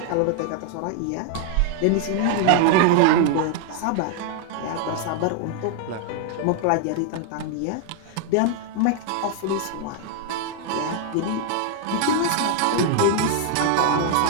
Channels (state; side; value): different; both; correlation 0.00